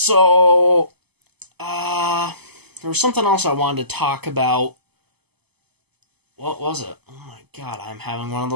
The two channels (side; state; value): left; late; 0.98 ms